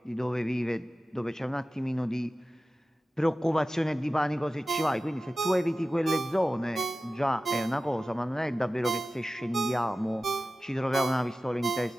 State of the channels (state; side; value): normal; both; correlation 0.95